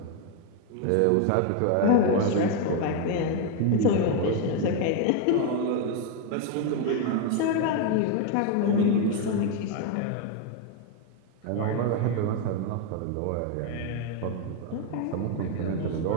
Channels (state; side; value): different; both; correlation 0.01